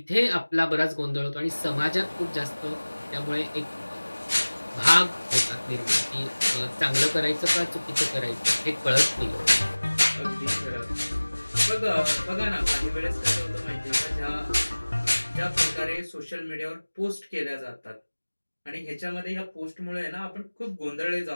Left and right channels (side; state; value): both; inverted; correlation -1.00